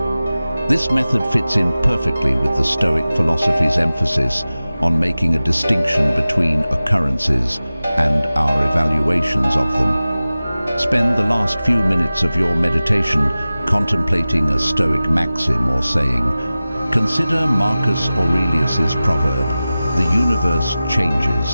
This method fits in perfectly with the Stoic philosophy's emphasis on making a distinction between occurrences and our evaluations of them. Spend the last few minutes of your meditation contemplating a Stoic maxim or saying, consider Marcus Aurelius's proverb, "The universe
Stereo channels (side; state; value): both; inverted; correlation -0.96